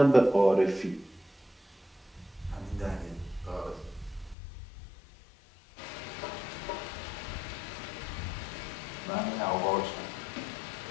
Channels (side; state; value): right; drops out; at 4.4 s